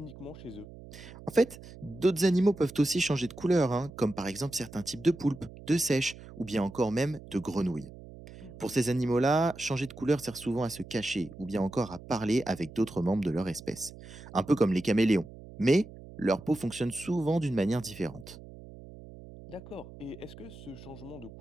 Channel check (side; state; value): right; noise; hum, 16 dB below the sound